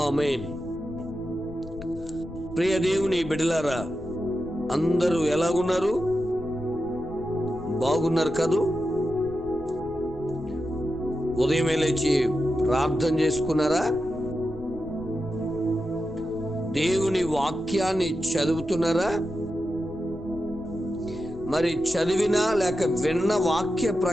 ఆమేన్. ప్రియ దేవుని బిడ్డలారా, అందరూ ఎలాగున్నారు? బాగున్నారు కదూ? ఉదయమే లేచి ప్రార్థన చేసుకున్నారా? దేవుని వాక్యాన్ని చదువుతున్నారా? మరి చదివినా లేక విన్న వాక్య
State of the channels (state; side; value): noise; left; rumble, 17 dB below the sound